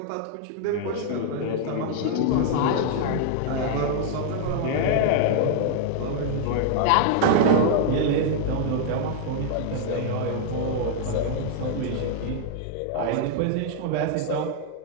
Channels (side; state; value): both; different; correlation -0.01